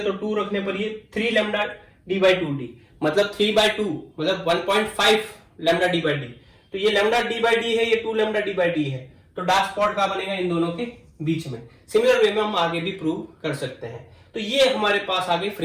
तो 2 रखने पर ये 3λd/2d, मतलब 3/2, मतलब 1.5 λd/d। तो ये λd/d है, ये 2λd/d है, तो डार्क स्पॉट कहां बनेगा, इन दोनों के बीच में। सिमिलर वे में हम आगे भी प्रूव कर सकते हैं। तो ये हमारे पास आगे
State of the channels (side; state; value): both; identical; correlation 1.00